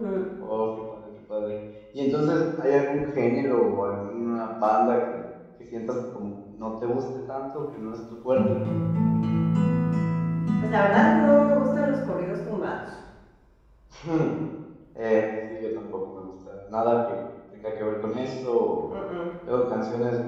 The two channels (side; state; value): both; identical; correlation 1.00